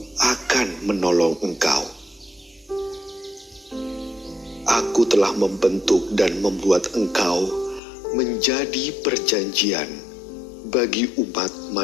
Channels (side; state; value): right; drops out; at 7.8 s